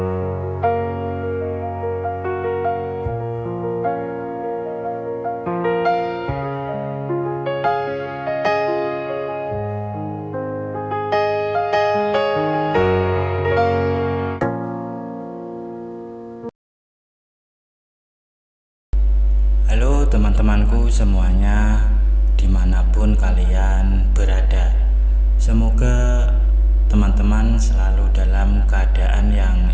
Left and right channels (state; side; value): identical; both; correlation 1.00